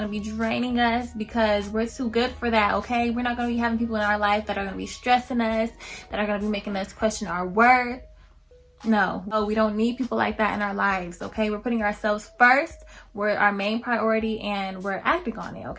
to be draining us, because we're too good for that, okay? We're not going to be having people in our life that are going to be stressing us, that are going to be making us question our worth. No, we don't need people like that in our lives, okay? We're putting ourselves first. We're our main priority, and we're acting on it,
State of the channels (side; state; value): both; identical; correlation 1.00